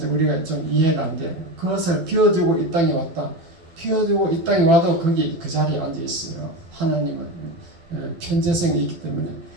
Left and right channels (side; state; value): left; late; 12 ms